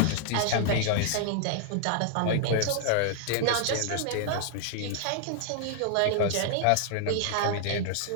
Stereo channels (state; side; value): different; both; correlation -0.01